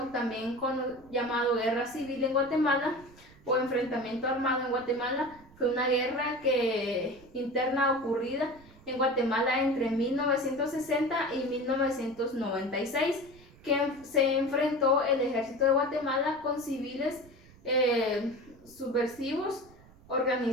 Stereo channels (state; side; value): noise; right; rumble, 24 dB below the sound